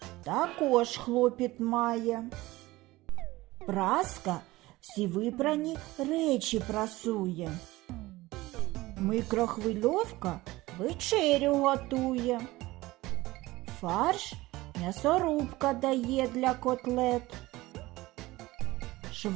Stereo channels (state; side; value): quieter; left; 19.1 dB